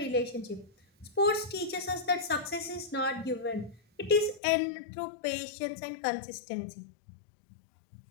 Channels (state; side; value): drops out; right; at 4.4 s